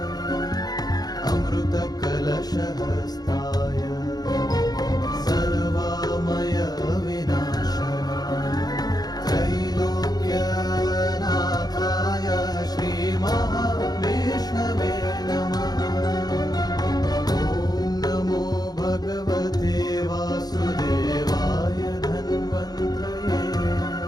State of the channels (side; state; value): right; late; 0.19 ms